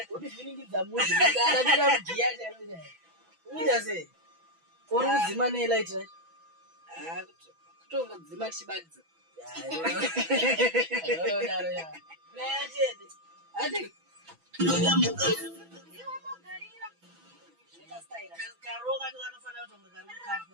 Udi zviningidza muzi ngana bira mugiya chero chero. Uita sei? Uri kudzima ne light right? Kutongodzima chibadza. Daro ya. Player chede. Ade. Karoga ndo anofana kutonga karoga kapo.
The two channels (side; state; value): left; late; 6.0 ms